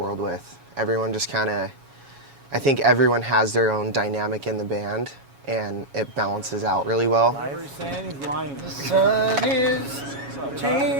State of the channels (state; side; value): late; left; 7.2 ms